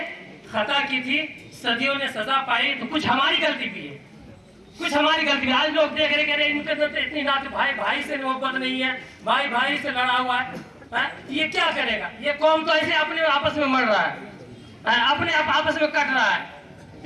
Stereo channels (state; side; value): identical; both; correlation 1.00